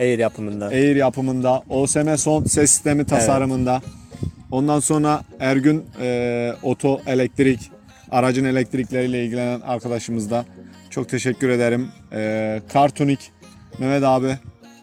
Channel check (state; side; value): identical; both; correlation 1.00